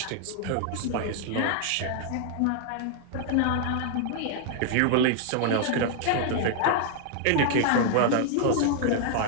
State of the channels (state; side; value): different; both; correlation 0.00